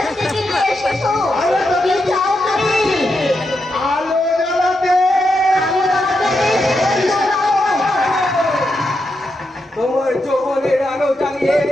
থেকে নিয়ে এসেছো? কি চাও তুমি? আলো জ্বালাতে! তোমার যৌবনের আলো জ্বালিয়ে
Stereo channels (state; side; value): normal; both; correlation 0.84